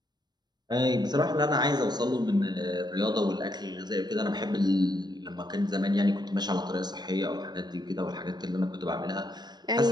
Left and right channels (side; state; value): left; late; 0.20 ms